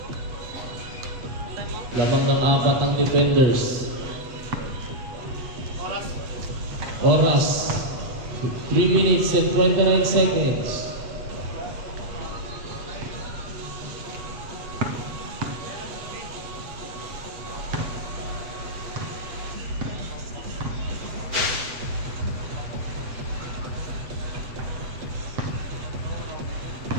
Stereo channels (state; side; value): late; left; 8.2 ms